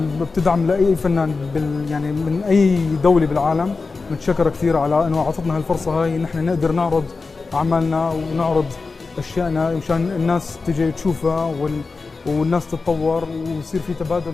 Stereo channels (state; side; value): quieter; right; 4.2 dB